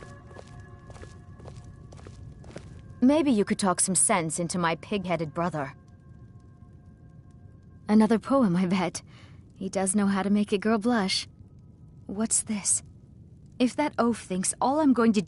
Maybe you could talk some sense into my pig-headed brother. Another poem, I bet. He does know how to make a girl blush. What's this? If that oaf thinks all I'm going to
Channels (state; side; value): identical; both; correlation 1.00